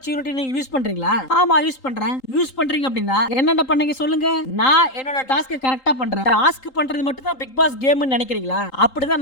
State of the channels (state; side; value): late; right; 3.8 ms